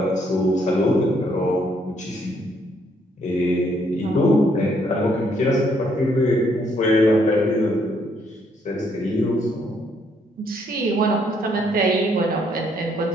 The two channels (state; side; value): normal; both; correlation 0.70